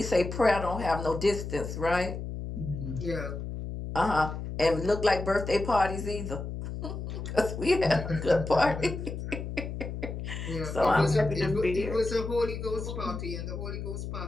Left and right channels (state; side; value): noise; left; hum, 6 dB below the sound